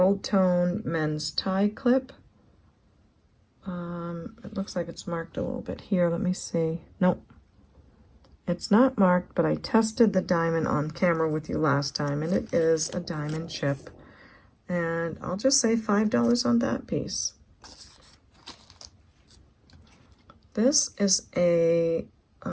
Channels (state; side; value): identical; both; correlation 1.00